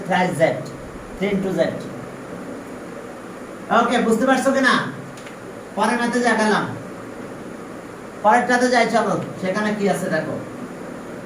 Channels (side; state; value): both; identical; correlation 1.00